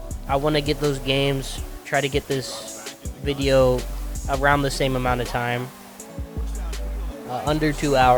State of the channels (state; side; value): identical; both; correlation 1.00